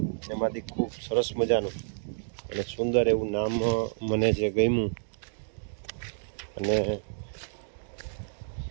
એમાંથી ખૂબ સરસ મજાનું અને સુંદર એવું નામ મને જે ગમ્યું અને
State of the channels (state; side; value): silent; left; digital silence